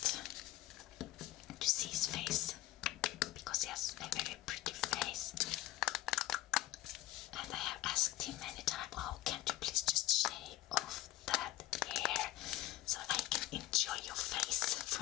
to see his face, because he has a very pretty face, and I have asked him many times, oh, can't you please just shave off that hair so I can enjoy your face for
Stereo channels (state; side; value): quieter; right; 15.5 dB